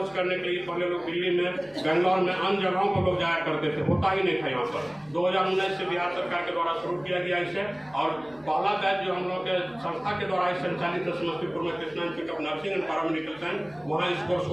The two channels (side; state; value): left; noise; hum, 27 dB below the sound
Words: करने के लिए पहले लोग दिल्ली में, बेंगलोर में, अन्य जगहों पर लोग जाया करते थे, होता ही नहीं था यहाँ पर। 2019 से बिहार सरकार के द्वारा शुरू किया गया इसे, और पहला बैच जो हम लोग के संस्था के द्वारा संचालित समस्तीपुर में Krishna institute of nursing and paramedical science, वहाँ इस कोर्स